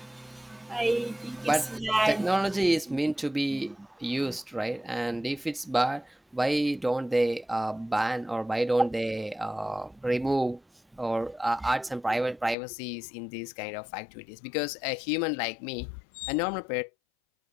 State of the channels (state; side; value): drops out; right; at 12.6 s